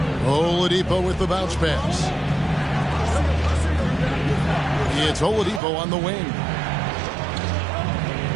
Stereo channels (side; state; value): left; drops out; at 5.6 s